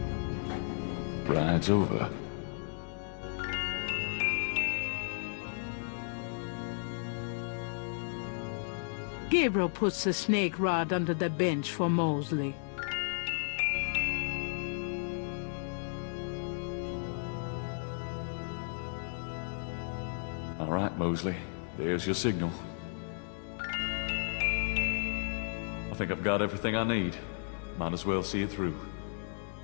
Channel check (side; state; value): right; silent; 55 dB below the other